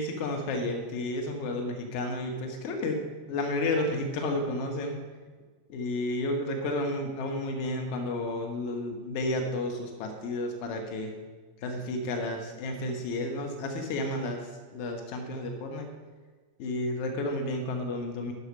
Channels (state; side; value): late; right; 3.3 ms